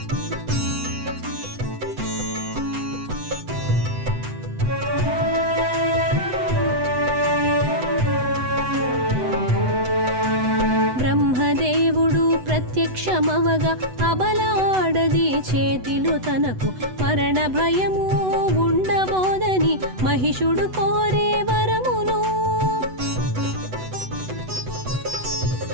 ప్రత్యక్షమవగా అబలాడది చేతిలో తనకు మరణ భయము ఉండబోదని మహిషుడు కోరే వరమును.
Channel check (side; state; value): left; late; 8.0 ms